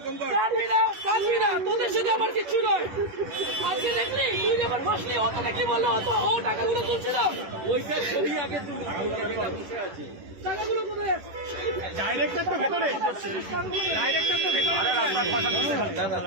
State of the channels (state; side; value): late; left; 10 ms